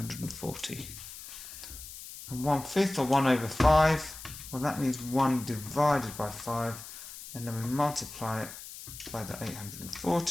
And 1/5 or 1/5, well, that means 1 divided by 5, and then we multiply it by the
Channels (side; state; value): left; noise; hiss, 13 dB below the sound